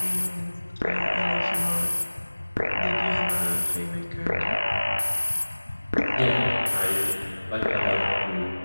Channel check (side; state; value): both; inverted; correlation -1.00